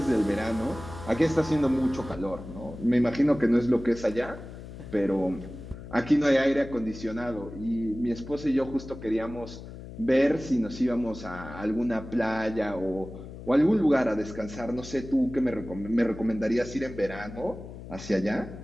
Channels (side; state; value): left; noise; hum, 13 dB below the sound